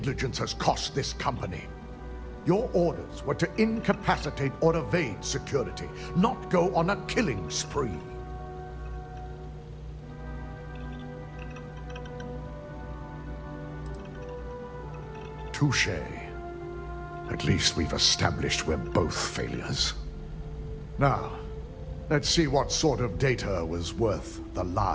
has cost this company. Your orders were to incapacitate or evade security, not go on a killing spree. Touché. At least we've established we're both failures. Now, let's see what sort of data was worth the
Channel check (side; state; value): both; identical; correlation 1.00